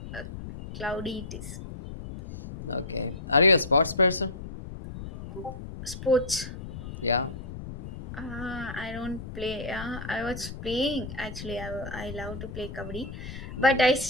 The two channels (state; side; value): noise; left; rumble, 10 dB below the sound